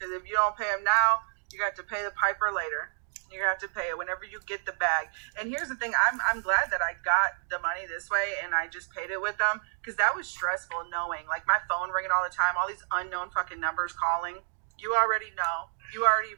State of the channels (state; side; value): silent; left; digital silence